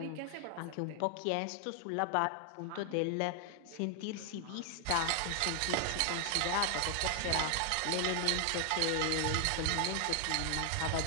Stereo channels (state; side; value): different; both; correlation 0.00